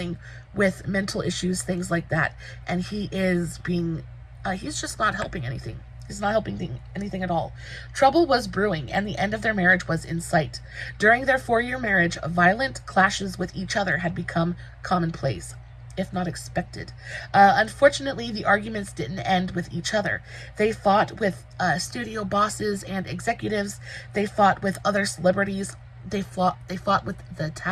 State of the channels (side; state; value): both; identical; correlation 1.00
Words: with mental issues, things like that, and he is being, he's just not helping anything. He's not helping anything at all. Trouble was brewing, and the end of their marriage was in sight. During their 4-year marriage, violent clashes with each other had become commonplace, if not expected. Unfortunately, the arguments didn't end with each other. They fought with studio bosses and executives. They fought with other celebrities. They fought with the